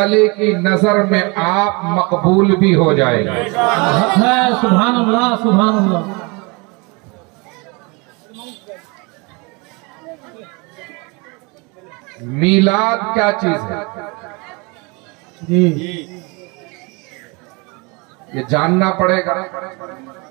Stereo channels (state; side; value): quieter; left; 28.8 dB